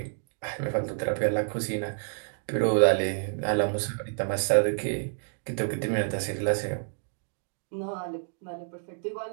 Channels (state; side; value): silent; left; digital silence